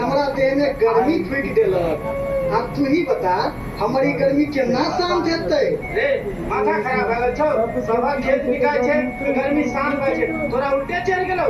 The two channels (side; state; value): both; identical; correlation 1.00